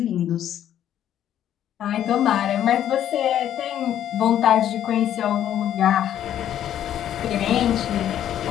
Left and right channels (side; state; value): right; quieter; 10.8 dB